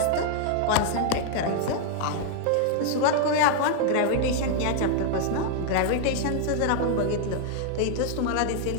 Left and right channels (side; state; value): both; different; correlation 0.00